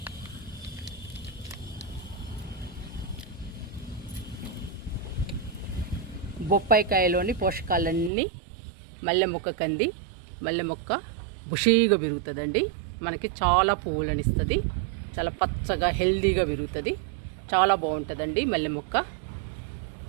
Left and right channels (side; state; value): left; drops out; at 8.1 s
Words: బొప్పాయికాయలోని పోషకాలన్నీ మల్లె మొక్కకు అంది. మల్లె మొక్క బుషీగా పెరుగుతుందండి. మనకి చాలా పువ్వులను ఇస్తుంది. చాలా పచ్చగా హెల్దీగా పెరుగుతుంది. చాలా బాగుంటుందండి మల్లె మొక్క.